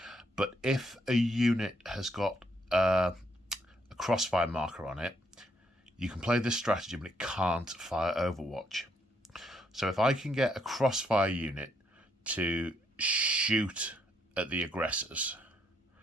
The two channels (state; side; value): normal; both; correlation 0.73